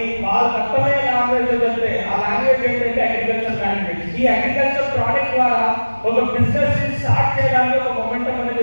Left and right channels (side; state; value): both; inverted; correlation -1.00